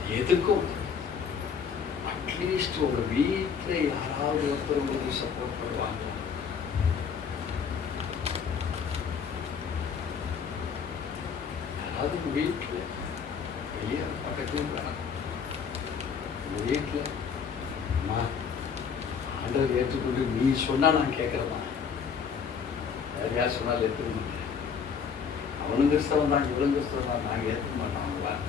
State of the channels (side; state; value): right; quieter; 6.5 dB